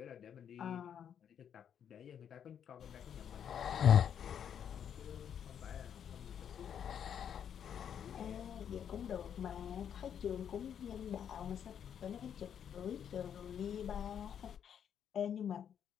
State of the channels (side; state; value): right; quieter; 8.6 dB